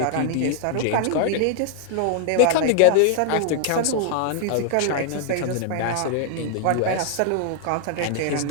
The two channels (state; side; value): different; both; correlation -0.01